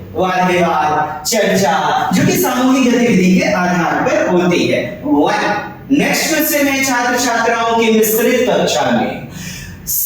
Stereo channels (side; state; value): both; identical; correlation 1.00